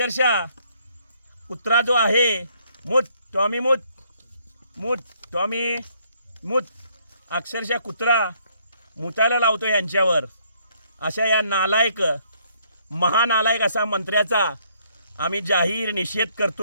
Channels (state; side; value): inverted; both; correlation -0.67